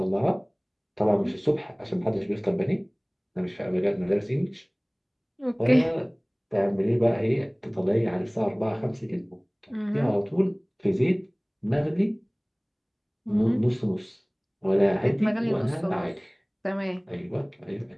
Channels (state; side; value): identical; both; correlation 1.00